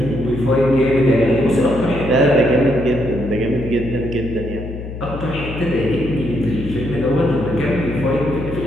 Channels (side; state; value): left; noise; hum, 9 dB below the sound